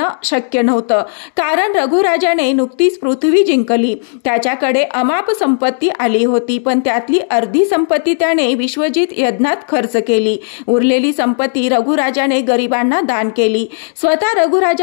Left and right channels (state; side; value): silent; right; digital silence